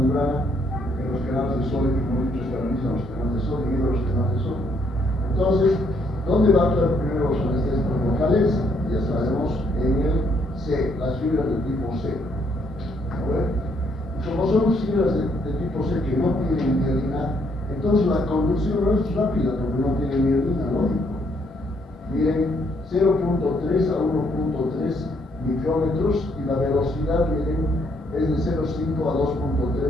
en los canales de sodio, como he dicho, estabiliza los canales de sodio y los canales de sodio. Entonces, ¿dónde va a actuar primero los anestésicos locales? Ya sabemos, en el C, las fibras de tipo C. ¿No ven? Y como son fibras de tipo C que no tienen mielina, entonces la conducción no es rápida porque no tiene mielina, lógico. Miren, 0.3 a 1.3 micrómetros y la velocidad, miren, es de 0.5 a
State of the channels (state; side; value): normal; both; correlation 0.71